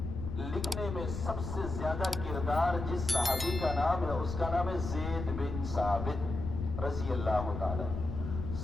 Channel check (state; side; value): noise; left; rumble, 6 dB below the sound